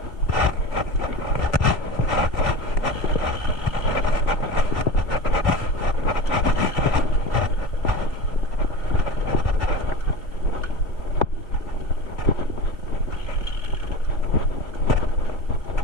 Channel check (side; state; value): right; late; 2.7 ms